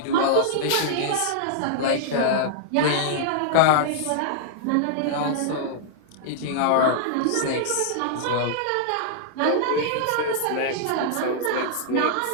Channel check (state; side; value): different; both; correlation -0.01